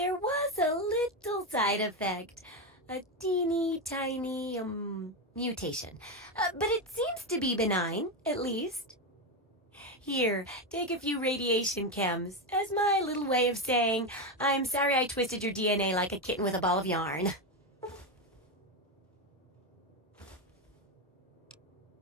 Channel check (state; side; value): normal; both; correlation 0.11